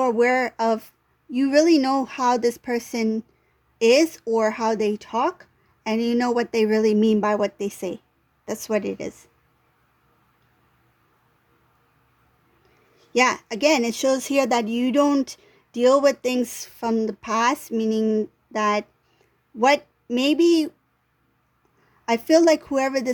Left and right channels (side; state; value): both; identical; correlation 1.00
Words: aware of. You really know how this person is or how they talk, and you know what they really mean by what they say. That's what it is. Yeah, again, it shows here that you don't deal with things from the past, meaning that what maybe I feel like whoever